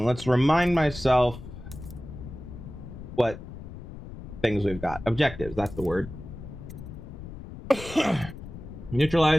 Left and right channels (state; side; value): noise; left; rumble, 12 dB below the sound